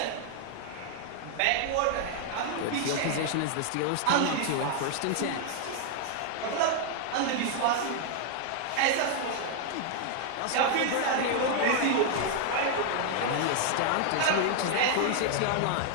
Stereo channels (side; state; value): both; different; correlation 0.00